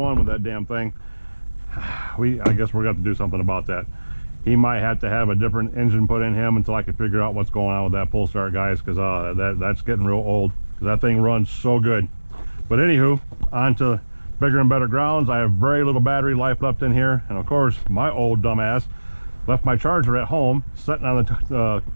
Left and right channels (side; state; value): both; inverted; correlation -1.00